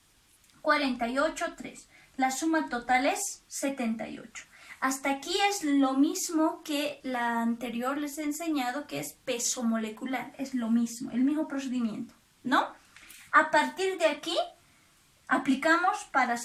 48, 3. La suma total es 78. Hasta aquí es lo mismo que la anterior les he enseñado, que es peso molecular. Es lo mismo, el mismo procedimiento, ¿no? A partir de aquí, aplicamos para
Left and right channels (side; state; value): both; identical; correlation 1.00